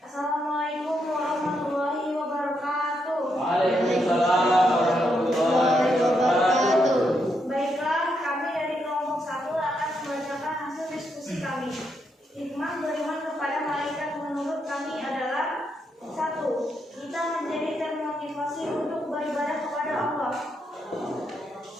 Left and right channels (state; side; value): normal; both; correlation 0.80